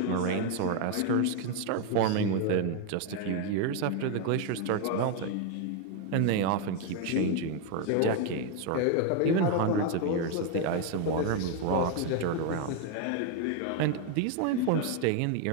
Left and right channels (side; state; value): both; different; correlation 0.01